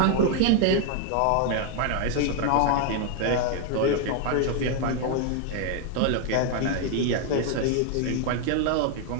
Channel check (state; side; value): different; both; correlation 0.00